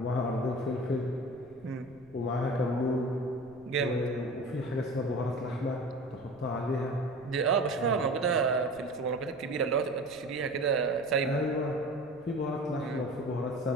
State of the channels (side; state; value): right; noise; rumble, 25 dB below the sound